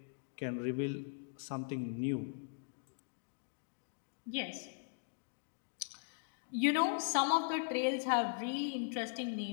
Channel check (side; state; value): right; silent; digital silence